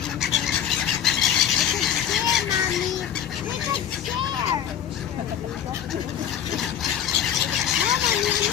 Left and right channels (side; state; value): right; quieter; 9.7 dB